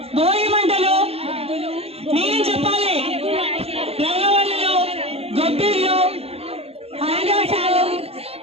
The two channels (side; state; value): left; late; 0.29 ms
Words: భోగి మంటలు, నేను చెప్పాలి, రంగవల్లులు, గొబ్బిళ్ళు, ఆకాశాలు,